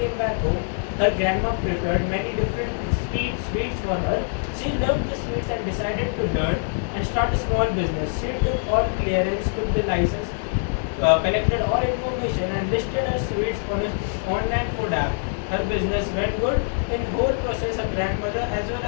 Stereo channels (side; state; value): right; silent; digital silence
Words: came back home, her grandma prepared many different sweets for her. She loved the sweets and decided to learn and start a small business. She took all clearance, took the license, collected all information and listed her sweets on an online food app. Her business went good. In whole process, her grandmother as well